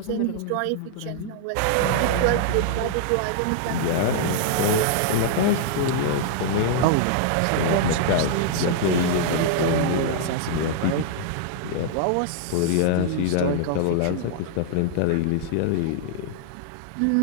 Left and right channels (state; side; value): different; both; correlation -0.01